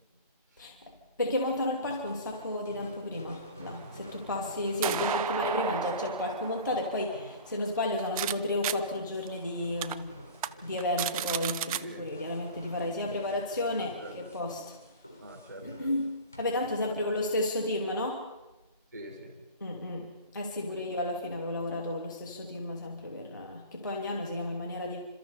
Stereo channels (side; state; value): both; inverted; correlation -0.37